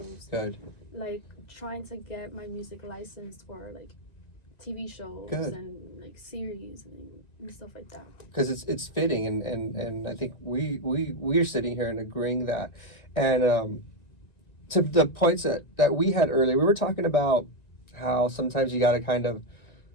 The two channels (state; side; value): late; right; 1.9 ms